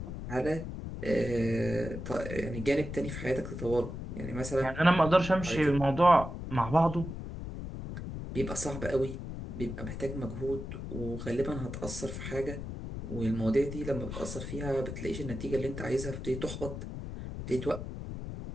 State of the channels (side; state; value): left; noise; rumble, 7 dB below the sound